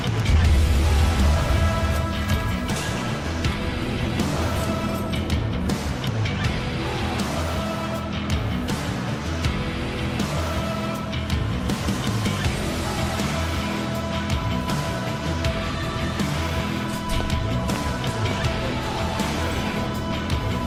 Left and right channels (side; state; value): both; identical; correlation 1.00